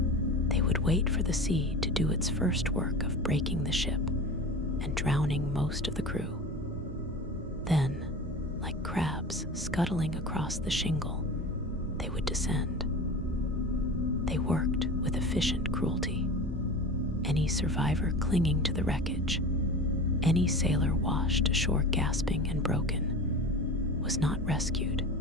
They would wait for the sea to do its first work of breaking the ship and drowning most of the crew. Then, like crabs scuttling across the shingle, they would descend. They worked with efficient cruelty. Any survivor clinging to the wreckage, any sailor washed ashore gasping and broken, was not rescued.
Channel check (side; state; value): both; normal; correlation 0.32